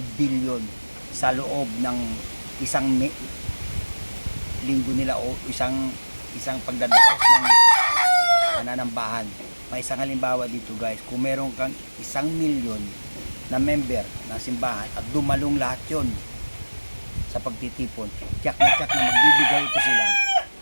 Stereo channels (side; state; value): both; inverted; correlation -1.00